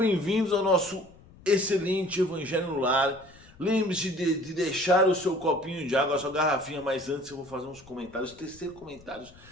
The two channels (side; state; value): left; noise; rumble, 24 dB below the sound